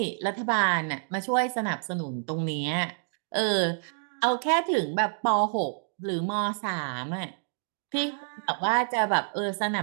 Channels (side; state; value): left; silent; digital silence